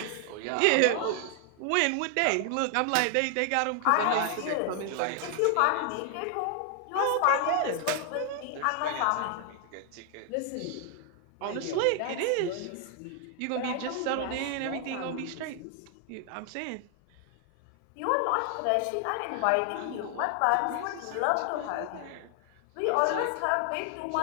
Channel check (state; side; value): different; both; correlation 0.00